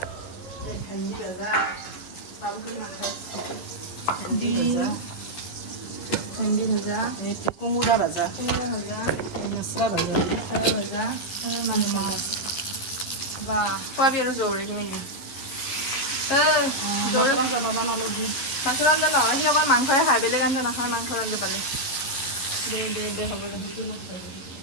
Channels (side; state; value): right; late; 11 ms